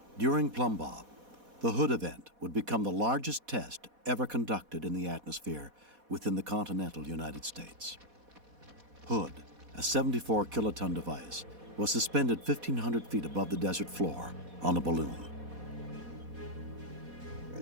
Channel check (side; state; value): left; late; 4.1 ms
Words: During Plum Bob, the Hood event would become the largest test ever conducted in the atmosphere within the continental United States. Hood, a 74-kiloton device, was suspended 1,500 feet above the desert floor on a balloon.